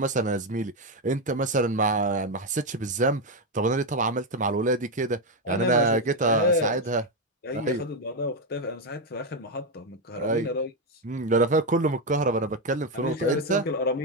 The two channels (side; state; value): both; normal; correlation 0.07